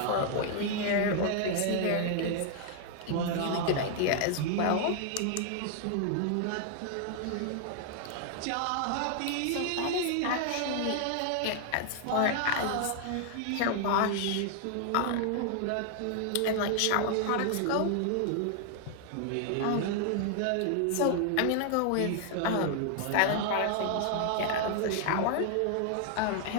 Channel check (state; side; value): different; both; correlation 0.00